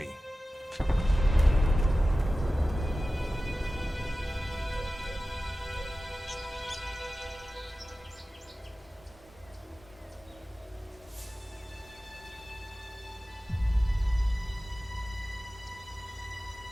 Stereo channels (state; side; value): normal; both; correlation 0.95